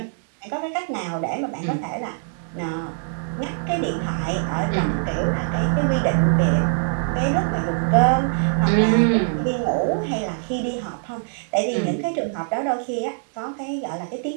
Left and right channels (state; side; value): silent; left; digital silence